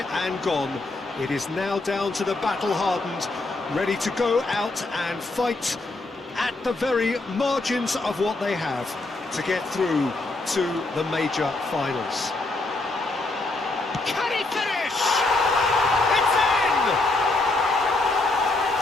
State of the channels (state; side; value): quieter; right; 3.1 dB